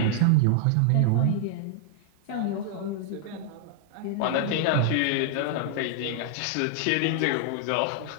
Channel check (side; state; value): both; different; correlation 0.00